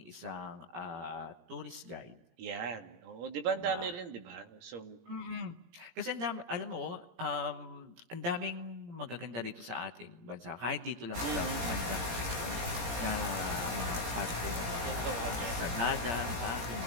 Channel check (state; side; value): late; left; 17 ms